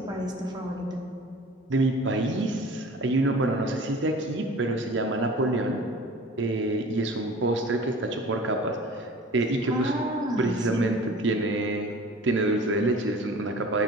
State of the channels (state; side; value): normal; both; correlation 0.43